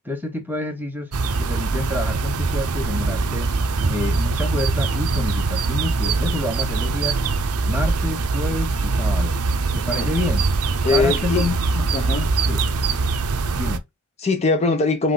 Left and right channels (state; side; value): normal; both; correlation 0.66